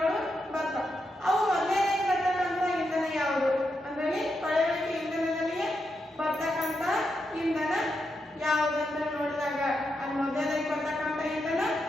ಬರ್ತಾವ. ಅವು ಮೊದಲನೇ ಬರ್ತಕ್ಕಂಥ ಇಂಧನ ಯಾವುದು ಅಂದ್ರೆ ಕೊಳೆಯುವಿಕೆ ಇಂಧನದಲ್ಲಿ ಬರ್ತಕ್ಕಂಥ ಇಂಧನ ಯಾವುದಂತ ನೋಡಿದಾಗ ಅದು ಮೊದಲನೇ ಬರ್ತಕ್ಕಂಥ ಇಂಧನ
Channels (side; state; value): both; normal; correlation 0.84